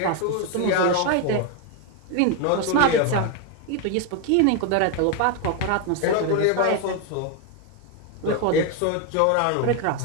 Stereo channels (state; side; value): different; both; correlation 0.02